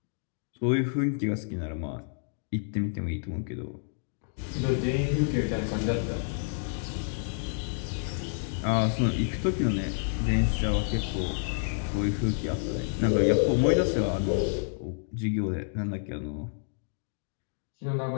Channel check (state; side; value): silent; right; digital silence